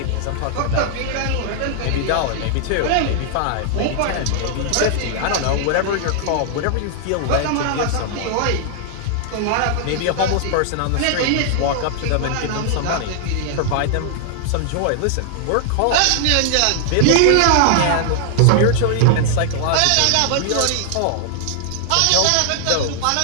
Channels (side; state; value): both; different; correlation 0.00